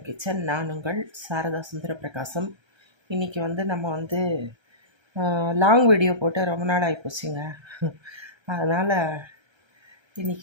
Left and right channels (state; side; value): late; left; 1.3 ms